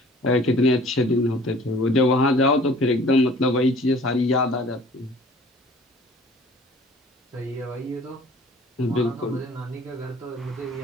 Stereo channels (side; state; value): both; normal; correlation 0.50